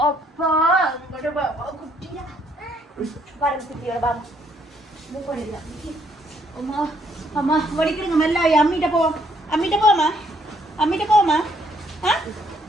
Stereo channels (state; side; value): normal; both; correlation 0.69